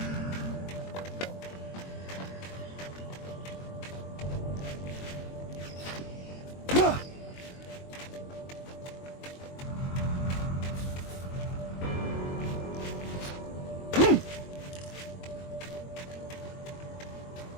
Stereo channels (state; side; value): late; right; 22 ms